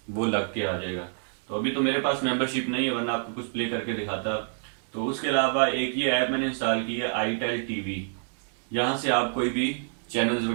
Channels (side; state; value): left; silent; digital silence